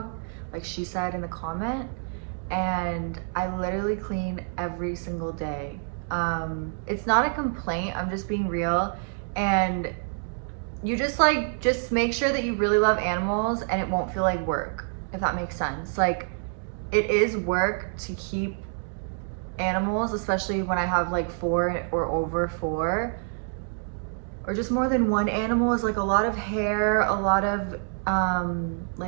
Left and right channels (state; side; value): silent; left; 55 dB below the other